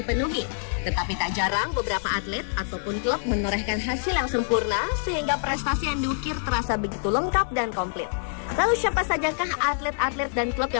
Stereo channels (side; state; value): right; silent; digital silence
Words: Tetapi tak jarang beberapa atlet ataupun klub menorehkan hasil yang sempurna sehingga prestasi yang diukir terasa begitu lengkap dan komplit. Lalu siapa sajakah atlet-atlet dan klub